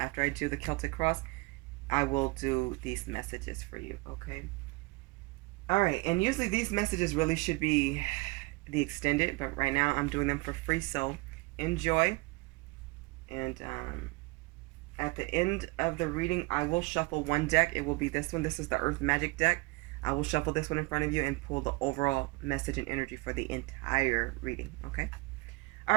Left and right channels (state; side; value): quieter; left; 25.8 dB